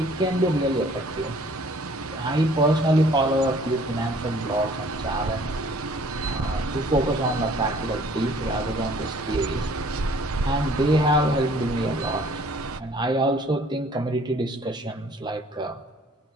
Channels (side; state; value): both; normal; correlation 0.56